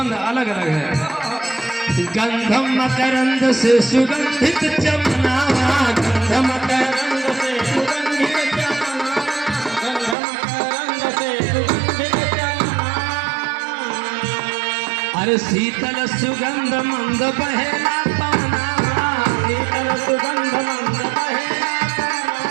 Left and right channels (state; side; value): drops out; left; at 10.2 s